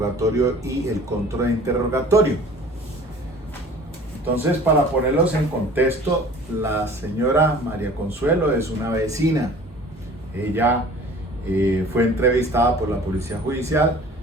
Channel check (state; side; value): normal; both; correlation 0.46